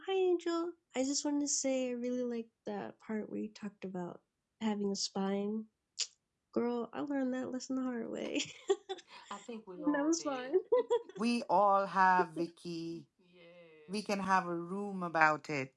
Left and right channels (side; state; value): both; identical; correlation 1.00